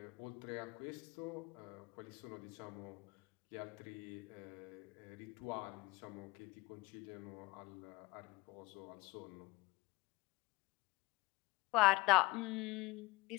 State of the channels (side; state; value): right; quieter; 22.0 dB